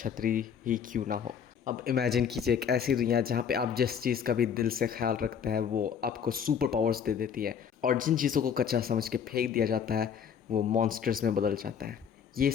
ही क्यों ना हो। अब इमेजिन कीजिए एक ऐसी दुनिया जहाँ पे आप जिस चीज़ का भी दिल से ख्याल रखते हैं वो आपको सुपर पावर्स दे देती है, और जिन चीज़ों को कच्चा समझ के फेंक दिया जाता है वो मॉन्स्टर्स में बदल जाता है। ये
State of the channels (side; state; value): right; quieter; 7.6 dB